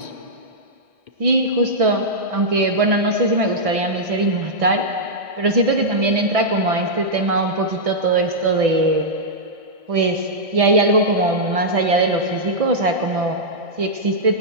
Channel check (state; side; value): late; left; 1.6 ms